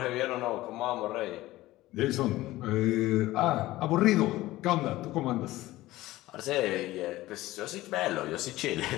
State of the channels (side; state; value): right; quieter; 17.2 dB